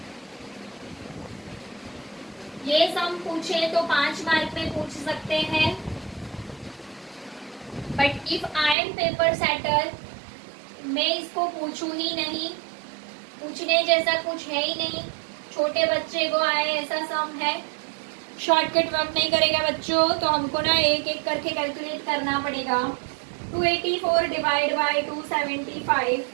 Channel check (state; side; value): drops out; left; at 8.8 s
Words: ये सम पूछे तो 5 मार्क में पूछ सकते हैं, but if I M paper setter मैं इसको पूछूं ही नहीं, पूछने जैसा कुछ है ही नहीं। छोटे बच्चे को आए ऐसा सम है, शॉर्टकट वर्क नहीं करेगा बच्चों, तो हमको ना एक एक करके कैलकुलेट करना पड़ेगा। 284 डिवाइड बाय 275,